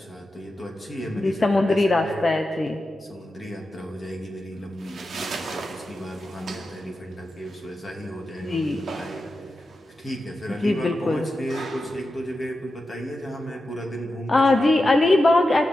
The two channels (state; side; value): normal; both; correlation 0.90